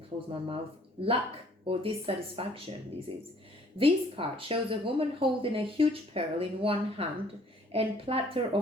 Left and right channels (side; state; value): both; normal; correlation 0.58